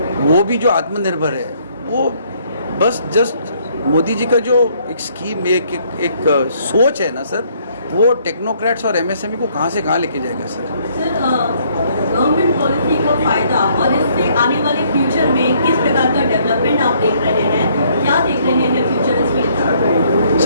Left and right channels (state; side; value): inverted; both; correlation -0.66